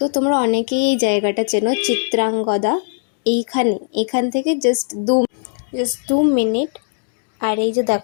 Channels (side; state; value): right; silent; digital silence